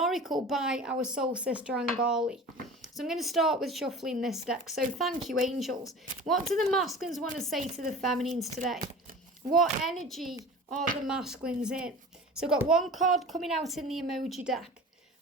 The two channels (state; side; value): normal; both; correlation 0.38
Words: by our soul sister Angali. So I'm going to start with shuffling this deck. So thank you, angels. What do the masculines want to say to the feminines today? What energy are the masculines in? So I've got one card coming out in the emoji deck.